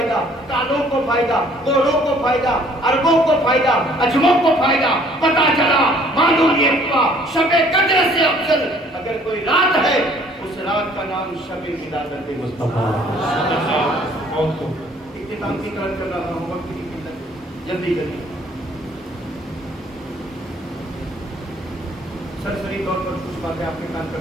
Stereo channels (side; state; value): both; normal; correlation 0.58